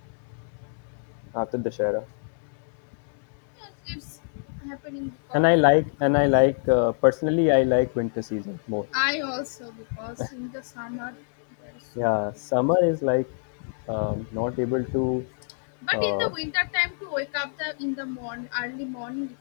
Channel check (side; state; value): right; silent; digital silence